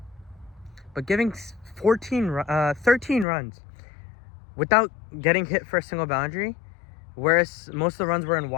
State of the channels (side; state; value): right; drops out; at 3.2 s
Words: But giving 13 runs without getting hit for a single boundary, whereas most of the runs were in